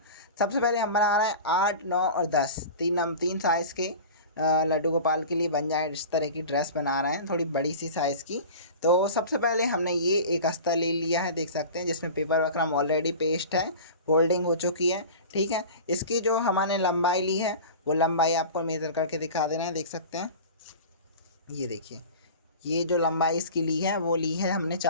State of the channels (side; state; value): both; inverted; correlation -0.35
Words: सबसे पहले हम बना रहे हैं 8, 9 और 10 तीन साइज़ के लड्डू गोपाल के लिए बन जाए इस तरह की ड्रेस बना रहे हैं, थोड़ी बड़ी सी साइज़ की। तो सबसे पहले हमने ये एक अस्तर ले लिया है, देख सकते हैं, जिसमें पेपर वक्रम ऑलरेडी पेस्ट है, फोल्डिंग हो चुकी है, ठीक है। इसकी जो हमने लंबाई ली है वो लंबाई आपको मेज़र करके दिखा देना है, देख सकते हैं। ये देखिए, ये जो लंबाई इसकी ली है वो ली है हमने